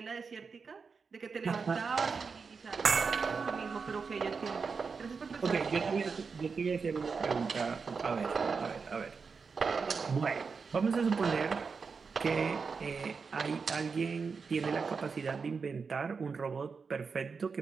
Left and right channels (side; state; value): left; quieter; 5.2 dB